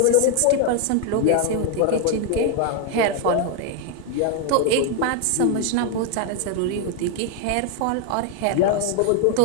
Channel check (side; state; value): both; different; correlation 0.01